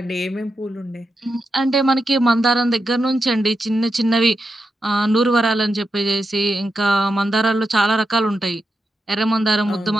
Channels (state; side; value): normal; both; correlation 0.87